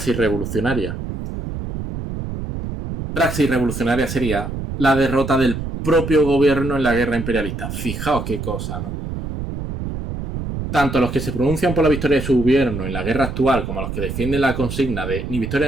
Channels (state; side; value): noise; right; rumble, 6 dB below the sound